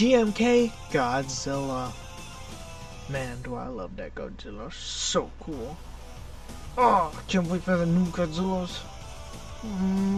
Godzilla. Man, do I love that Godzilla. So cool. Oh, I can't wait for the new Godzillas.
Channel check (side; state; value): both; identical; correlation 1.00